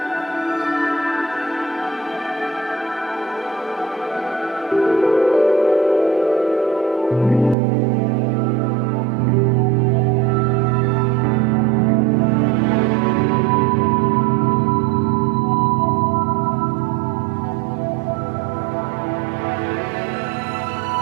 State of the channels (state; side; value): drops out; left; at 7.6 s